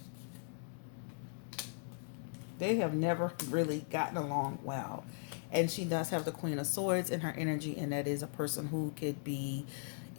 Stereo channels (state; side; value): silent; right; digital silence